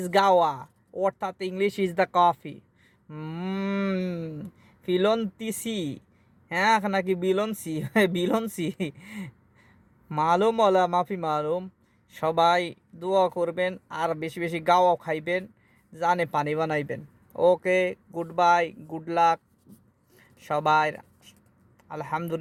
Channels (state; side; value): identical; both; correlation 1.00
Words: গাওয়া অর্থাৎ ইংলিশ ইজ দ্য কফি। ফিলন্তিসি হ্যাঁ নাকি বিলনসি বিলনসি মালুম ওলা মাফি মালুম। সবাই দোয়া করবেন আর বেশি বেশি গাওয়া খাইবেন, জানে পানি বানাইবেন। ওকে, গুড বাই, গুড লাক সবাই।